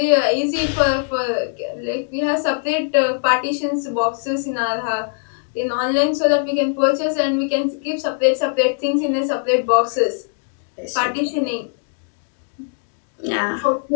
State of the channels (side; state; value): right; silent; digital silence